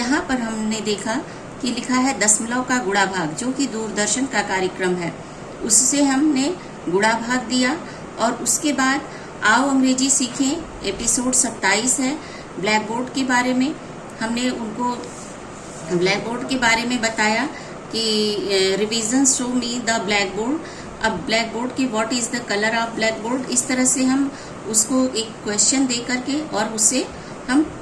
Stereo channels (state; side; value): identical; both; correlation 1.00